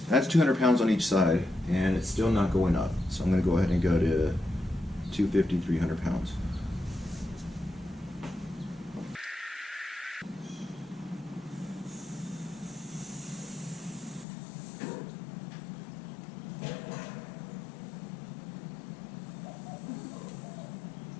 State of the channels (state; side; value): drops out; right; at 14.2 s